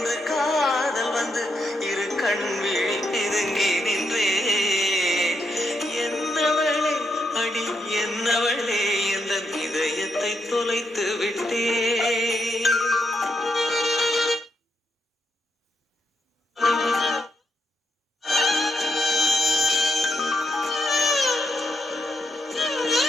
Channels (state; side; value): normal; both; correlation 0.80